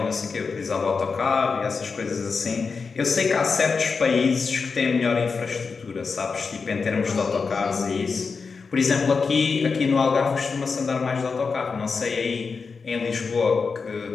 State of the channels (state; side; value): quieter; right; 5.0 dB